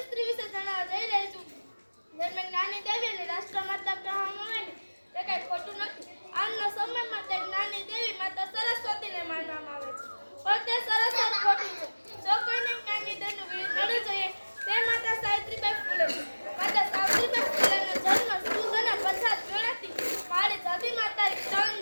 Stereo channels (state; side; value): inverted; both; correlation -1.00